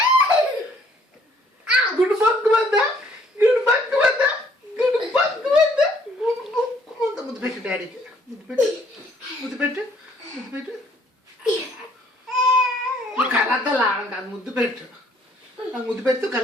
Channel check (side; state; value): both; normal; correlation 0.63